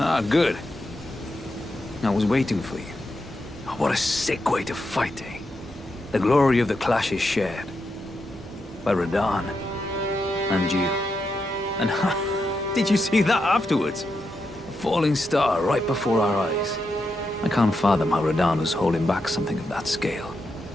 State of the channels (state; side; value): normal; both; correlation 0.85